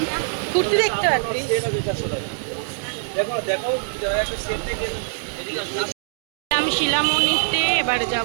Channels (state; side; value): silent; left; digital silence